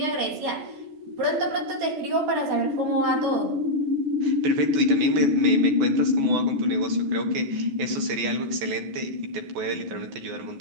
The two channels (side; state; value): left; late; 14 ms